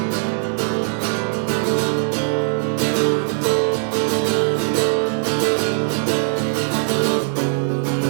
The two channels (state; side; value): silent; left; digital silence